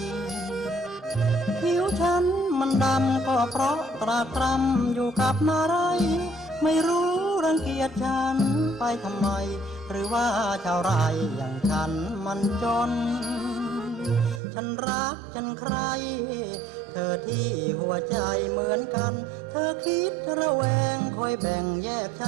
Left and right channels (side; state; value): left; drops out; at 14.4 s